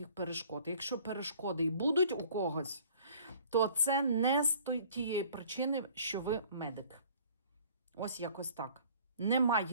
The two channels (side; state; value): both; inverted; correlation -0.54